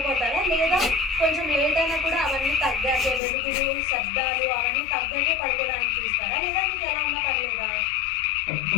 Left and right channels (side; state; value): right; drops out; at 3.2 s